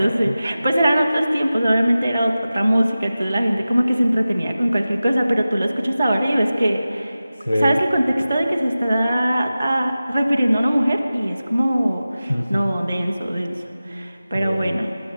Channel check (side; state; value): both; inverted; correlation -0.95